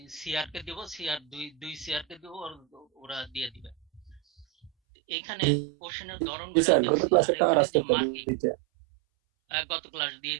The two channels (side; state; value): left; drops out; at 4.7 s